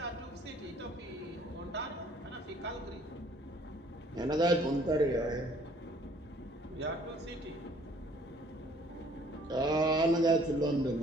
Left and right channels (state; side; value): normal; both; correlation 0.58